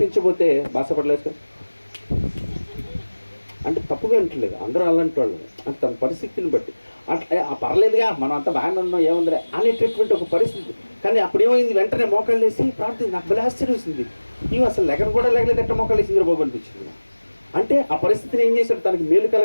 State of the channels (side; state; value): both; inverted; correlation -1.00